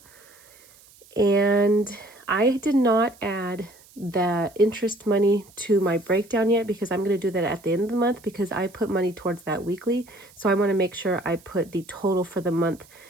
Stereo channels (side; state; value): right; noise; hiss, 26 dB below the sound